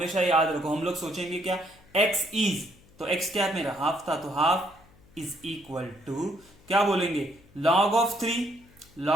याद रखो, हम लोग सोचेंगे क्या, x इज, तो x क्या मेरा हाफ था, तो हाफ इज इक्वल टू क्या बोलेंगे, लॉग ऑफ 3,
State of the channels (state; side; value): noise; left; hum, 27 dB below the sound